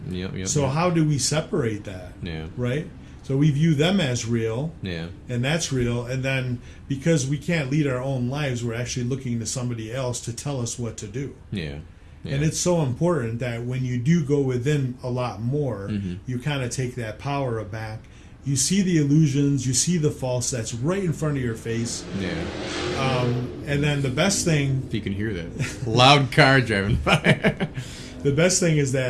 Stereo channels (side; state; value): both; identical; correlation 1.00